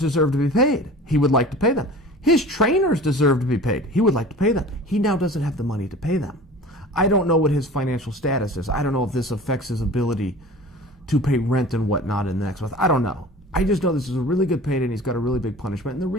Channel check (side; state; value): both; normal; correlation 0.40